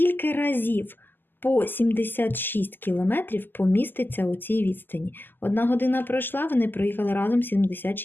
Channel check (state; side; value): late; right; 0.092 ms